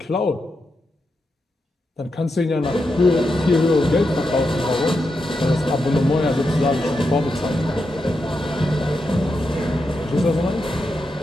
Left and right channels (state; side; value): normal; both; correlation 0.86